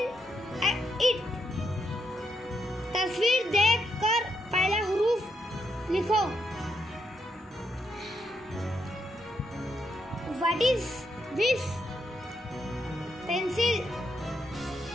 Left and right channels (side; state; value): both; normal; correlation 0.79